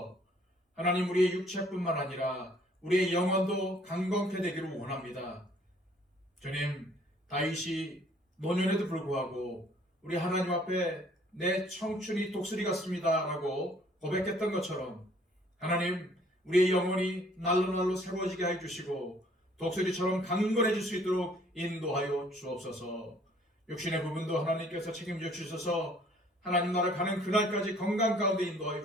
하나님, 우리의 육체뿐만 아니라 우리의 영혼도 강건케 되기를 원합니다. 주님, 다윗이 노년에도 불구하고 우리 하나님 앞에 내 청춘이 독수리 같습니다 라고 고백했던 것처럼 하나님, 우리의 영혼이 날로 새로워지게 해주시고 독수리처럼 강건해질 수 있도록 인도하여 주옵소서. 육신의 부분도 하나님께서 책임져 주셔서 하나님 나라 가는 그날까지 건강 가운데 인도하여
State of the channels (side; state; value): both; normal; correlation 0.59